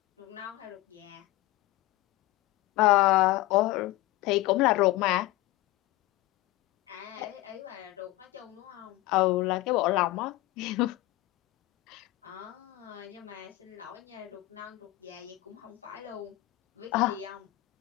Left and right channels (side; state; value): right; quieter; 18.5 dB